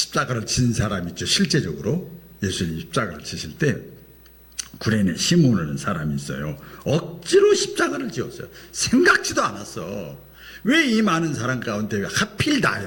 진 사람 있죠. 실제적으로 예수님 십자가를 지실 때 구레네 시몬이라는 사람이 있어요. 억지로 십자가를 지었어요. 생각지도 않았어. 왜 이 많은 사람 가운데 하필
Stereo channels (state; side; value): identical; both; correlation 1.00